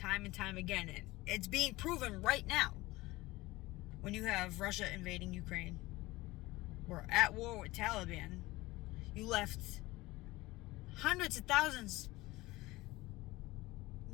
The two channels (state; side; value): quieter; right; 19.8 dB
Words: and time again. And it's being proven right now when you have Russia invading Ukraine. We're at war with Taliban. You left hundreds of thousands,